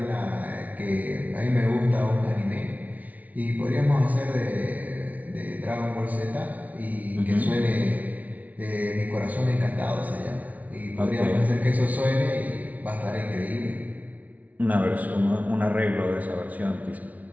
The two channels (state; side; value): late; left; 0.072 ms